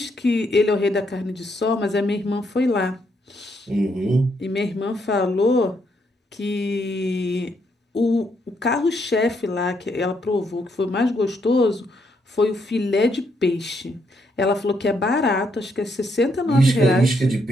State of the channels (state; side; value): normal; both; correlation 0.75